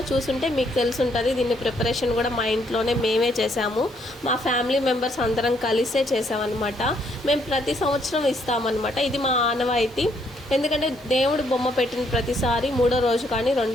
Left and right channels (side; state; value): both; normal; correlation 0.71